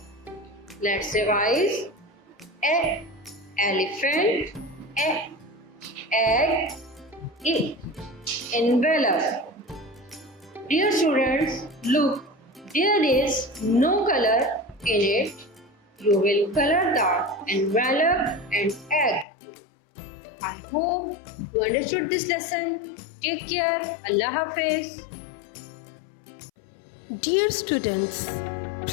Let's revise. E, elephant. E, egg. E, envelope. Dear students, look, there is no color in it. You will color the envelope and egg. I hope you understood this lesson. Take care. Allah Hafiz. Dear students,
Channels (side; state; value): right; drops out; at 19.2 s